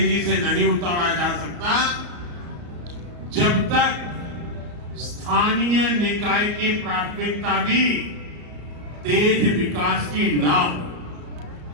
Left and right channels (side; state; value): left; late; 34 ms